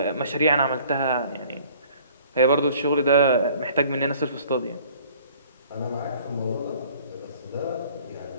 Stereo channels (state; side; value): inverted; both; correlation -0.54